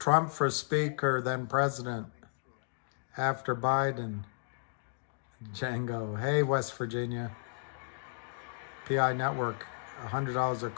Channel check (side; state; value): right; silent; digital silence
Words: for Speaker, then President, after Biden. Django. Hey, West Virginia. PI Network, $100 a